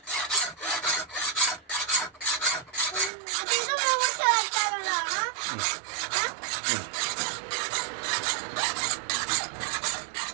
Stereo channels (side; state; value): left; drops out; at 3.1 s